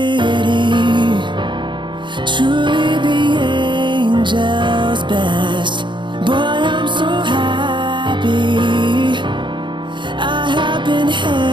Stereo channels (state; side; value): late; left; 0.23 ms